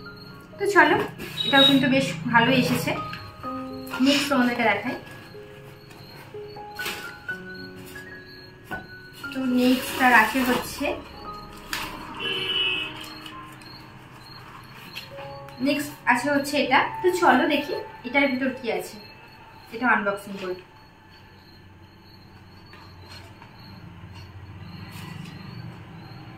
তো চলো এটাও কিন্তু বেশ ভালো এসেছে। নেক্সট তোমাদেরকে দেখাই। তো নেক্সটটা রাখে হচ্ছে নেক্সট আছে হচ্ছে এটা। তো চলো দেখি এটার ভিতর কি আছে, এটা আনবক্সিং করি।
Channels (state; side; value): identical; both; correlation 1.00